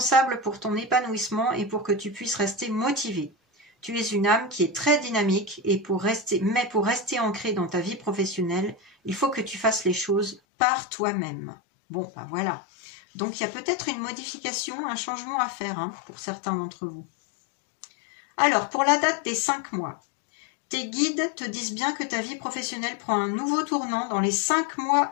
pour ton épanouissement et pour que tu puisses rester motivé. Tu es une âme qui est très dynamique et pour rester ancrée dans ta vie professionnelle, il faut que tu fasses les choses par toi-même. Bon, ben voilà. Donc, il y a peut-être une modification, un changement à faire hein, pour certains d'entre vous. Alors, pour la date des 5 mois, tes guides te disent bien que ta vie professionnelle prend un nouveau tournant dans les 5 mois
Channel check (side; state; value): right; drops out; at 10.4 s